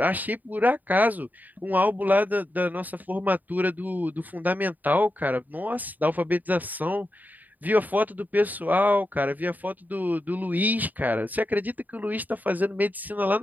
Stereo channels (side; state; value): left; late; 0.083 ms